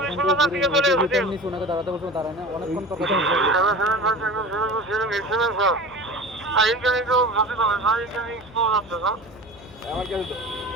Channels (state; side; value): noise; right; hum, 26 dB below the sound